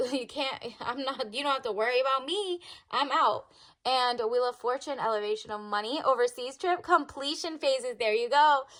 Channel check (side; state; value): both; identical; correlation 1.00